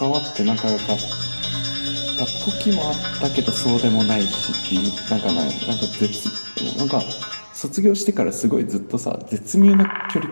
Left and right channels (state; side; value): inverted; both; correlation -1.00